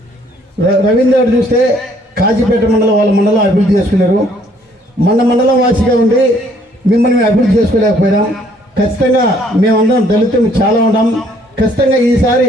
రవీంద్ర చూస్తే కాజీపేట మండలం వాళ్ళ మండలం అభివృద్ధి చేసుకున్నారు, మన మండలం వాసిగా ఉండి మిమ్మల్ని మేము అభివృద్ధి చేసుకోలేకపోయినాం. ఖచ్చితంగా మేమందరం దళితులు చాలా ఉంటాం. ఖచ్చితంగా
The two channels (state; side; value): normal; both; correlation 0.63